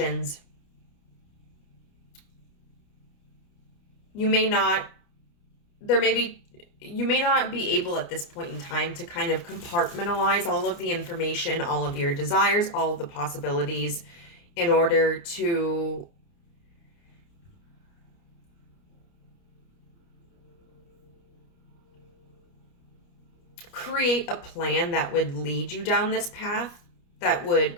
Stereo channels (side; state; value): right; late; 29 ms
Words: you may not be able at this point in time to kind of compartmentalize all of the information, all of your desires, all of the possibilities in order to create a plan that would lead you down this path, that would